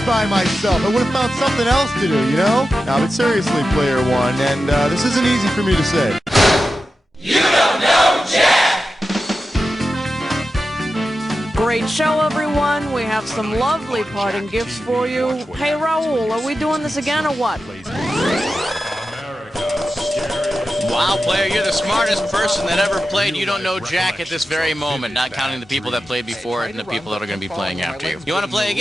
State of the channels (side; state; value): both; normal; correlation 0.91